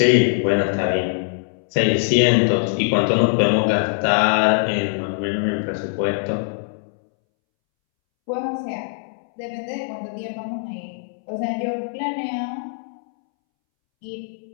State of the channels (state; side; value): silent; right; 64 dB below the other